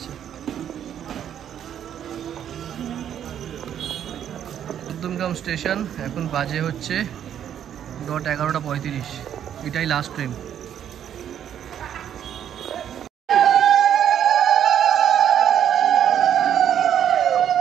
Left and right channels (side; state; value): left; quieter; 9.7 dB